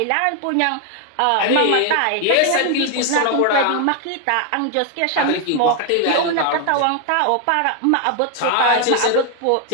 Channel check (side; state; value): both; different; correlation 0.00